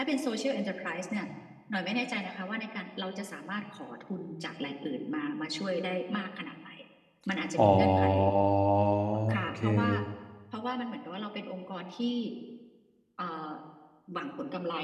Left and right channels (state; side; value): identical; both; correlation 1.00